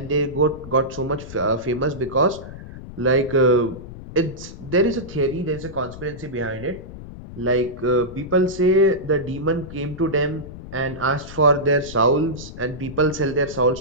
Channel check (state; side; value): noise; left; rumble, 13 dB below the sound